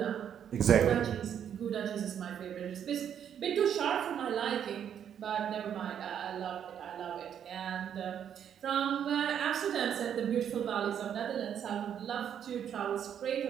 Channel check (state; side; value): quieter; left; 9.0 dB